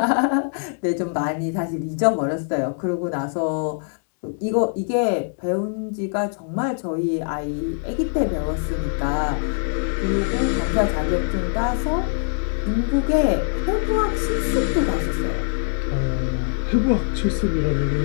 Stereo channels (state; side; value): silent; right; digital silence